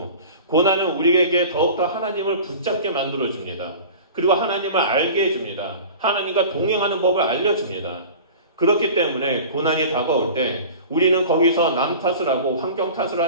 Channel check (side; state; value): both; inverted; correlation -0.38